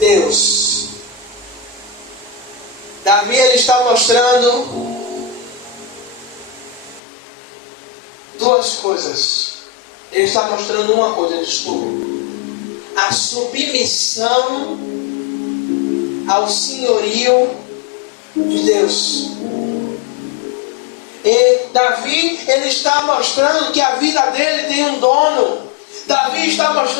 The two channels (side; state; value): right; drops out; at 7.0 s